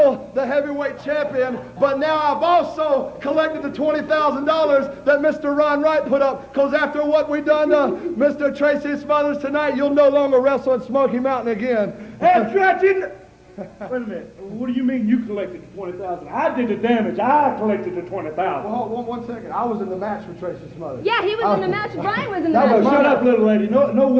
the heavyweight champion, but now I've also collected the $20,000 that Mr. Ron Wright put up, because after what we done to Mr. Tracy Smothers tonight, you'll no longer wrestle in Smoky Mountain again. Hey, Tracy! Wait a minute. What do you mean you collected the $20,000? I did the damage. I collected the $20,000. Well, one second. I was in the match with Tracy Smothers. Yeah, he was in the match. Brian was in the match. Now, shut up, little lady. No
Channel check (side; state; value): both; identical; correlation 1.00